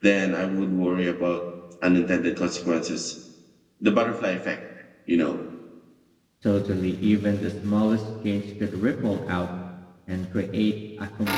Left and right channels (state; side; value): identical; both; correlation 1.00